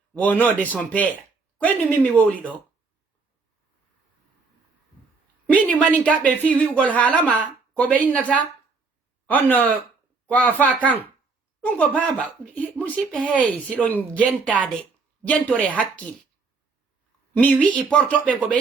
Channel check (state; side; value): quieter; left; 4.3 dB